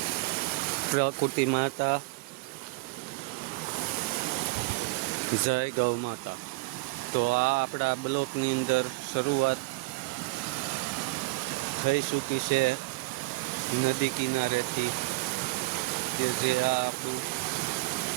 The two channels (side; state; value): left; quieter; 23.8 dB